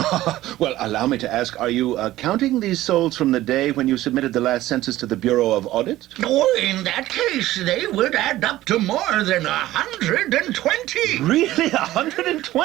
Well, allow me to ask, are you counting these souls from the day when you submitted the last census to the Bureau of Audit? Oh, in that case, they would add up to more than 120. Really?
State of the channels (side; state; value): left; quieter; 15.5 dB